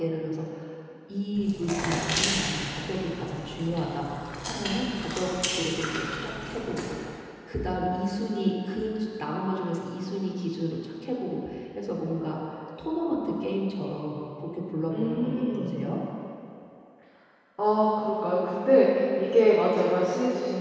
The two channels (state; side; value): identical; both; correlation 1.00